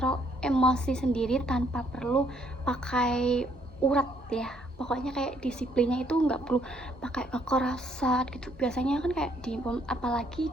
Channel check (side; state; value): both; normal; correlation 0.68